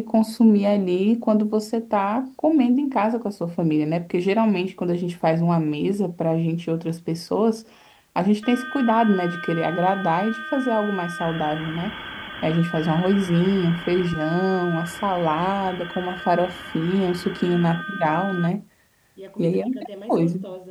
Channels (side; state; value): both; identical; correlation 1.00